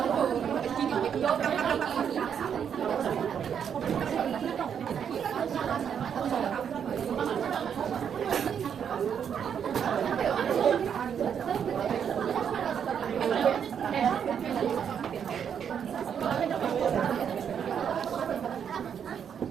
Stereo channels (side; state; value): left; quieter; 8.0 dB